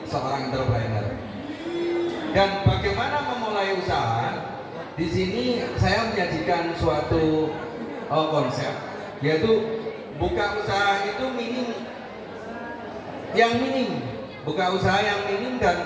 seorang entrepreneur. Dan bagaimana memulai usaha. Di sini saya menyajikan suatu konsep, yaitu buka usaha itu buka usaha yang minim dan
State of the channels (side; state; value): both; identical; correlation 1.00